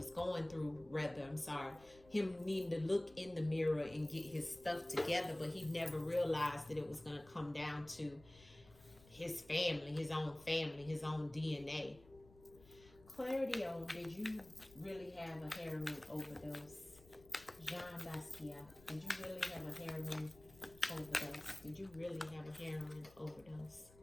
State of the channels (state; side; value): noise; left; rumble, 23 dB below the sound